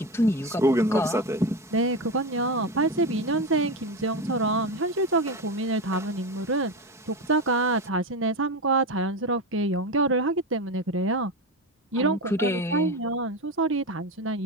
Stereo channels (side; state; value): both; normal; correlation 0.19